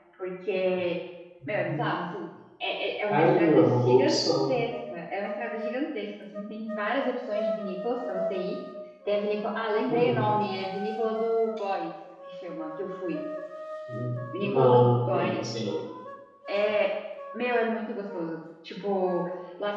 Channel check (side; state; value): both; identical; correlation 1.00